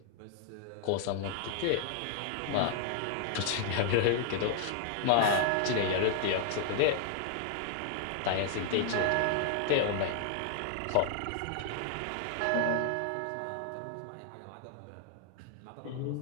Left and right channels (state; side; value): different; both; correlation 0.00